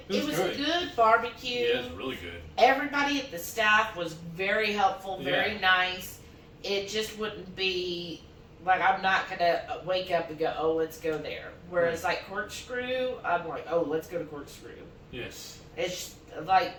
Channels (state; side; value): identical; both; correlation 1.00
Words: was a good barbecue. Yeah, it was really good. Everybody at the staff was very helpful, very nice. It just wouldn't be like, I'm not gonna wake up and go, oh, let's go there. Whereas like Corkscrew, I'm like, oh, let's go to Corkscrew. Yes. It's like